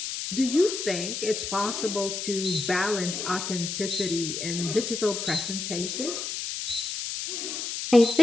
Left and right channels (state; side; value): noise; left; hiss, 4 dB below the sound